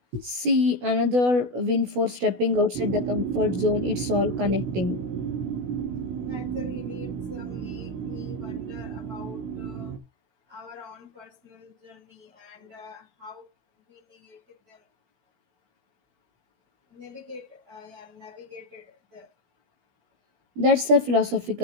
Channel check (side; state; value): left; late; 16 ms